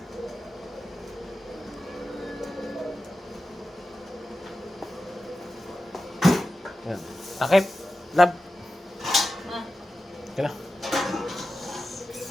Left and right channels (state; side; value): normal; both; correlation 0.93